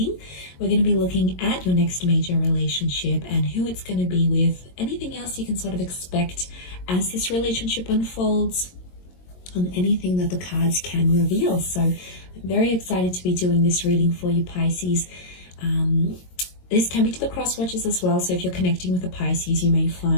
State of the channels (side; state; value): right; late; 22 ms